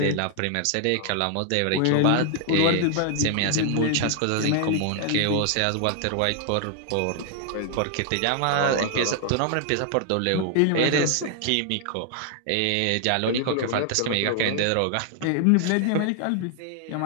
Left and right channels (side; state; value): both; different; correlation 0.00